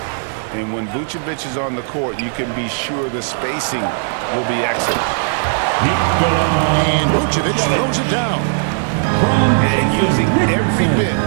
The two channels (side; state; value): left; silent; digital silence